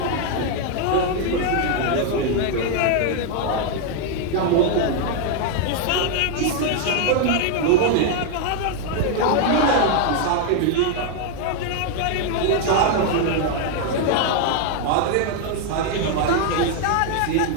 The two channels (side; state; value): both; different; correlation 0.00